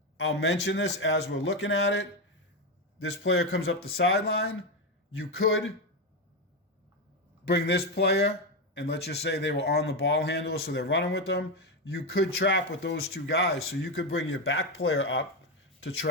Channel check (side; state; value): both; normal; correlation 0.10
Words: I'll mention this as we're looking at it. This player comes up the sideline. You could bring this player, and let's just say they were on the ball handler, so they're running with them. You could trap with those two guys. So you could bring your back player up to